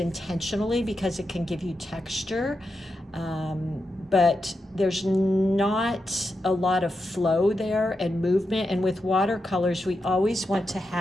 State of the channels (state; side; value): normal; both; correlation 0.87